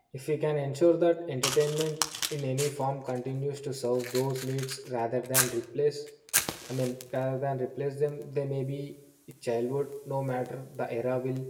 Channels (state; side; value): identical; both; correlation 1.00